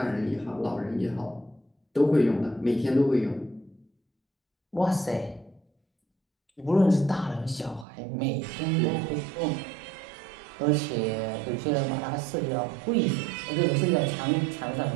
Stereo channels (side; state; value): left; drops out; at 7.9 s